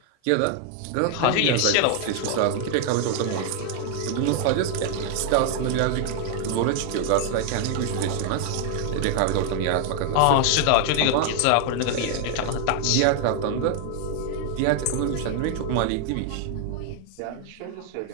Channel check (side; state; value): both; different; correlation 0.00